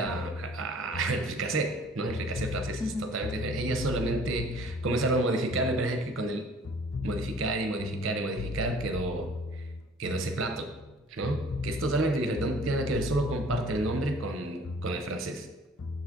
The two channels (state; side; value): normal; both; correlation 0.52